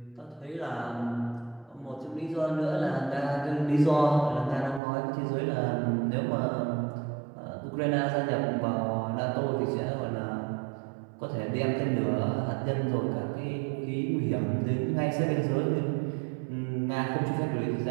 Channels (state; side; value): drops out; left; at 4.8 s